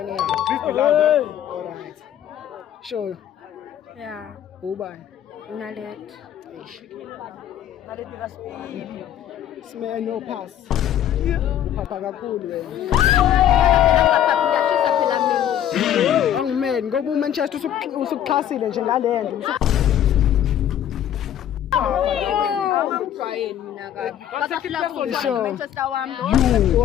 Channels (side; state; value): right; quieter; 10.8 dB